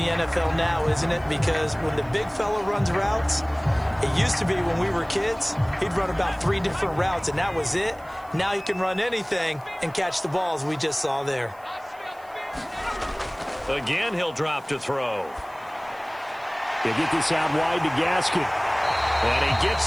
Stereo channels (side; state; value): right; noise; hiss, 28 dB below the sound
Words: NFL now, isn't it? Because when the big fella runs routes, it used to be when we were kids, he'd run about 3 different routes, and that was it. Now he can run anything and catch the balls we just saw there. Again, he'll drop to throw. They get this out wide to Gaskin. And he